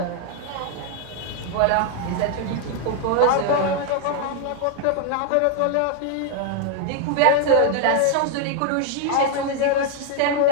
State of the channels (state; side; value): different; both; correlation 0.00